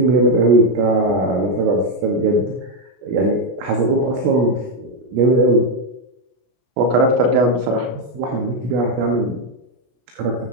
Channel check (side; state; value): left; late; 16 ms